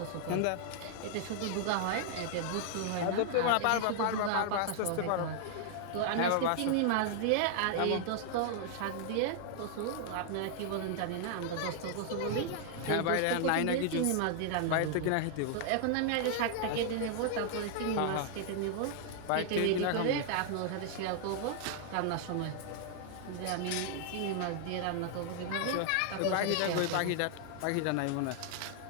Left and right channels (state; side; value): different; both; correlation 0.00